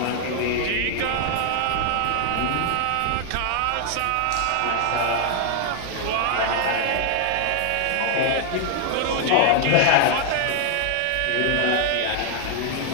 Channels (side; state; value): both; different; correlation 0.00